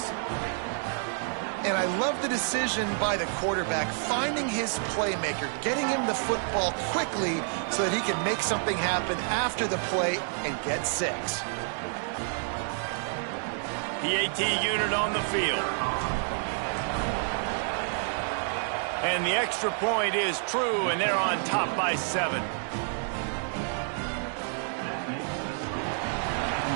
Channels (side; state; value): left; silent; 59 dB below the other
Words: And I love the decision by the quarterback, finding his playmaker, getting him the football quickly so that he can make something happen after the play and get 6. PAT unit on the field. And the extra point is true, and they're on top by 7.